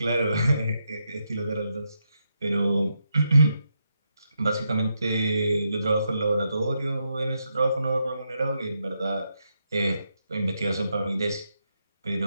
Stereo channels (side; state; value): both; inverted; correlation -0.82